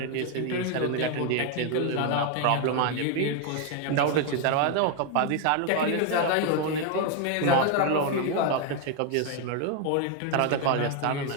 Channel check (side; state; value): both; different; correlation 0.01